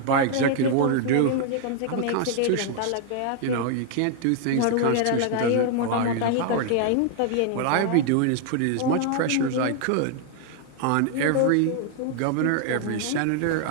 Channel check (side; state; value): both; different; correlation 0.00